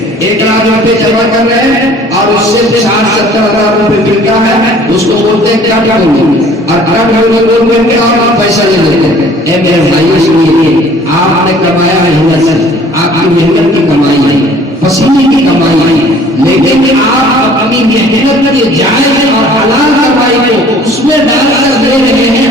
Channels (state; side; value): normal; both; correlation 0.52